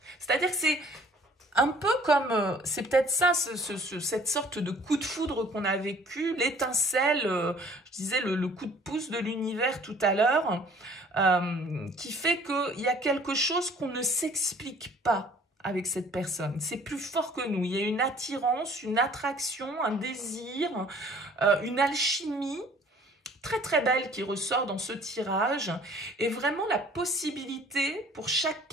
C'est-à-dire que c'est un peu comme, c'est peut-être ça, cette sorte de coup de foudre qu'on a vécu, l'étincelle, je disais le coup de pouce de l'univers tout à l'heure, qui fait qu'il y a quelque chose qu'on ne s'explique pas avec cette personne. C'est plus fort que nous. Il y a une attirance, une attraction, un désir, une alchimie très très belle qui ressort dans ce tirage est vraiment la possibilité pour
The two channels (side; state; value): both; normal; correlation 0.54